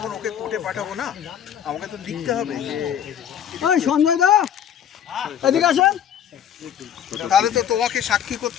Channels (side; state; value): right; quieter; 9.3 dB